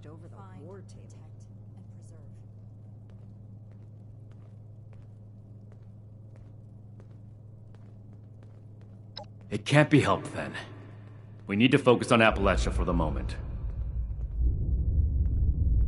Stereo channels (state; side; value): identical; both; correlation 1.00